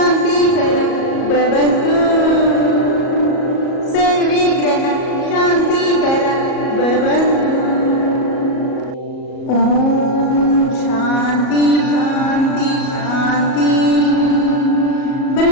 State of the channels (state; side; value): late; right; 37 ms